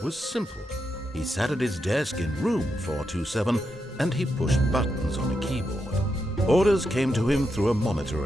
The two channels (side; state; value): both; normal; correlation 0.84